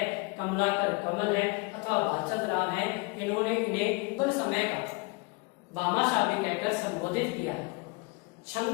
कमलाकर कमल है अथवा भाचद राव है, इन्होंने इन्हें उस समय का भामाशाली कहकर संबोधित किया।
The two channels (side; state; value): right; quieter; 28.0 dB